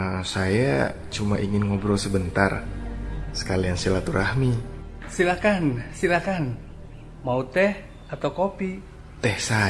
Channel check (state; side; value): identical; both; correlation 1.00